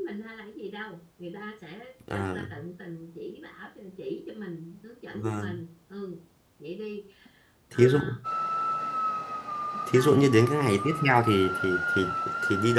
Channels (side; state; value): both; identical; correlation 1.00